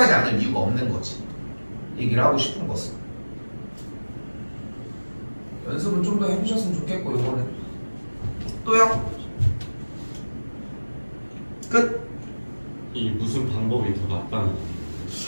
않을 이유가 없는 거지. 얘기를 하고 싶은 것은. 연습은 좀 더 해주셨으면 좋겠고 요거는. 또요? 끝? 이 무슨 방법이 더 낫다는 거?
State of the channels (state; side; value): inverted; both; correlation -1.00